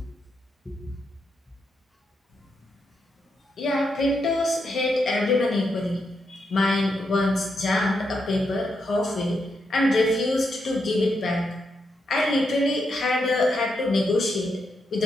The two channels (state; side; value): normal; both; correlation 0.82